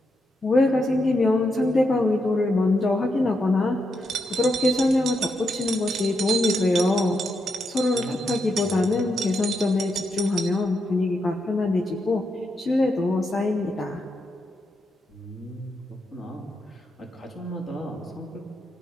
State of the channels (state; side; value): normal; both; correlation 0.83